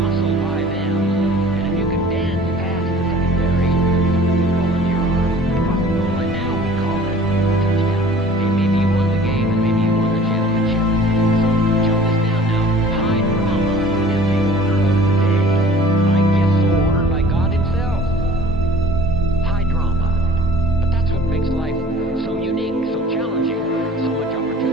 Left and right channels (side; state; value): both; normal; correlation 0.48